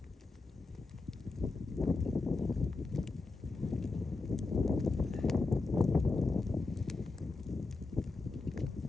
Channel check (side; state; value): right; quieter; 3.6 dB